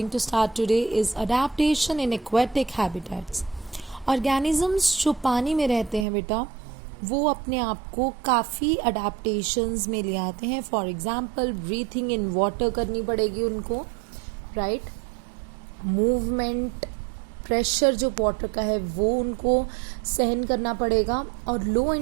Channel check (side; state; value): left; drops out; at 6.1 s